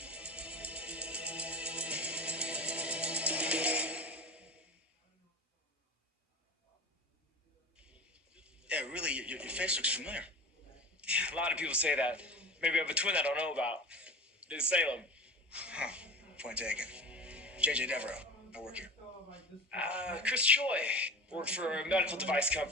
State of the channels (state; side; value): normal; both; correlation 0.33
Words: Yeah, really, your face looks familiar. A lot of people say that. Maybe I have a twin I don't know about. In Salem. Huh. Point taken. JJ Devereaux. I work here. Chris Choi. Work for a medical device